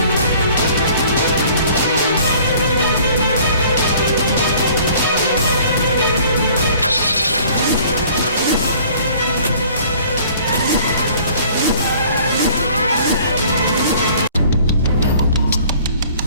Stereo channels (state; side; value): inverted; both; correlation -0.53